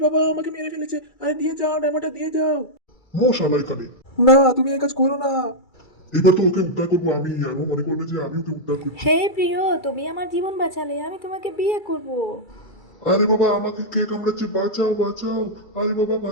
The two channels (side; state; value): right; late; 2.3 ms